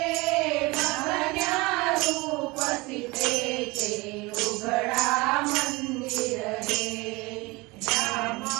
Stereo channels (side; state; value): left; quieter; 23.8 dB